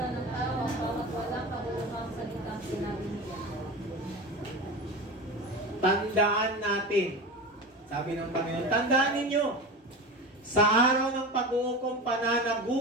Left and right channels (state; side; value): normal; both; correlation 0.27